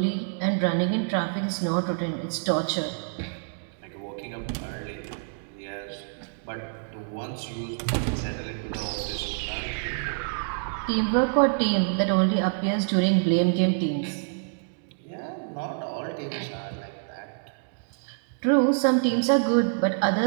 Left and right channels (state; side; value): silent; left; digital silence